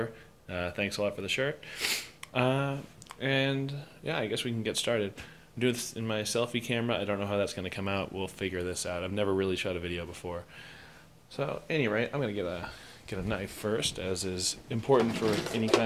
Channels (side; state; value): both; identical; correlation 1.00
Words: thanks a lot for the shirt. And yeah, I guess we can get started. I'm doing this in my selfie camera. I don't know how that's going to come out. We'll figure this out. I've never really shot a video before. So, at any rate, I'm going to get a knife first, as is important for any